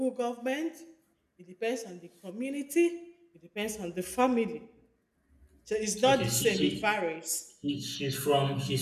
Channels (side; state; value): both; identical; correlation 1.00